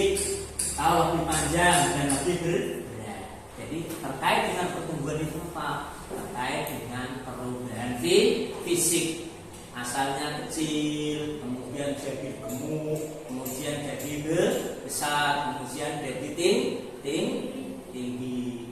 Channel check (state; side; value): identical; both; correlation 1.00